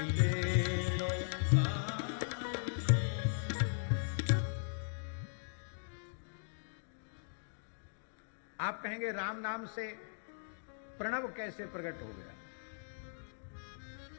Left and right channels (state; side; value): silent; right; digital silence